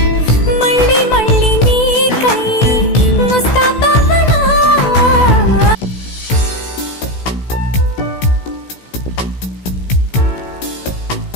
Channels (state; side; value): late; right; 16 ms